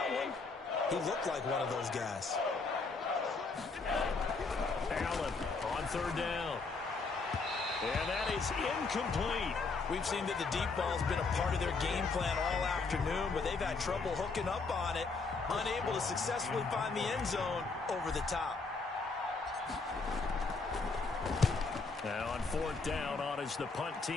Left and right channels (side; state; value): right; quieter; 4.2 dB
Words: one, he looked like one of those guys. Allen on 3rd down. And that is incomplete. We've seen that the deep ball's been a part of their game plan all afternoon, but they've had trouble hooking up on it, unable to successfully find the end zone over the top. Now on 4th down, on is the punt